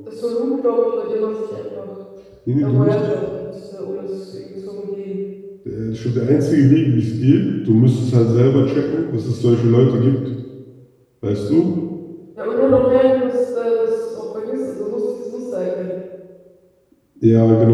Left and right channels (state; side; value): identical; both; correlation 1.00